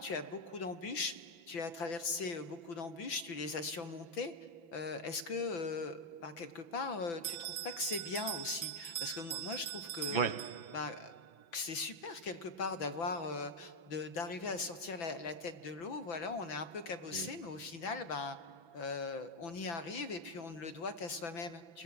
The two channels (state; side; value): late; right; 6.0 ms